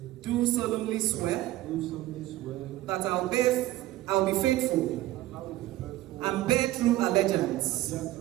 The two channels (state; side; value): quieter; left; 15.7 dB